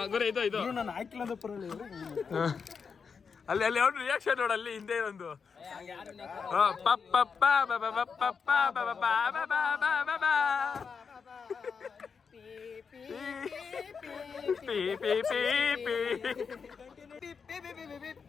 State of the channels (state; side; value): quieter; right; 5.8 dB